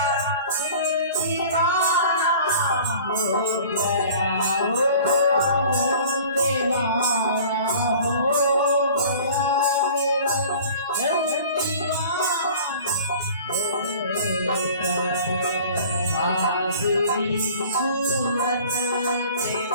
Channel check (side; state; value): both; inverted; correlation -0.46